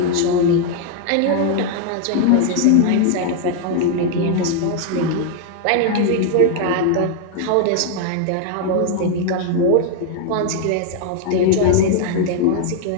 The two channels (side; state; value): both; different; correlation 0.00